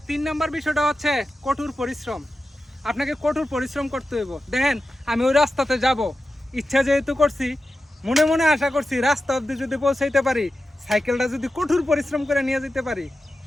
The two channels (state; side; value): normal; both; correlation 0.92